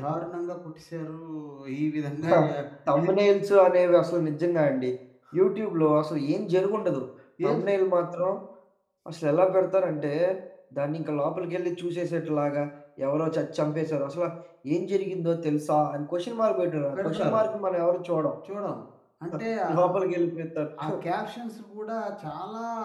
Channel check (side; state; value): both; identical; correlation 1.00